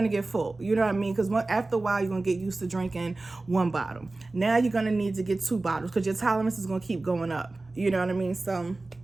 to get full. You know what I mean? Because after a while, you're going to get used to drinking one bottle. Now you're going to need to get 2 bottles, because your tolerance is going to keep going up. You know what I mean? So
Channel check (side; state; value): left; quieter; 3.2 dB